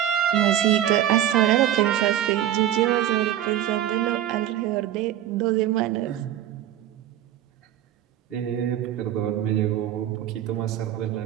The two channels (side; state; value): left; quieter; 11.6 dB